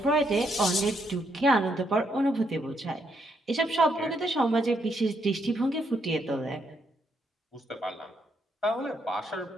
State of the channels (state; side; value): normal; both; correlation 0.76